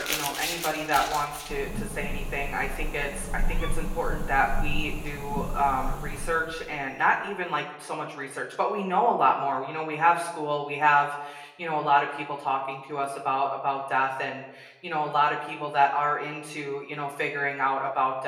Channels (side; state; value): both; identical; correlation 1.00